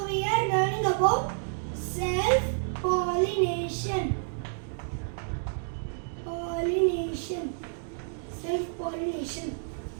we are learning about self-pollination. Self-pollination.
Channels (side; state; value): left; silent; digital silence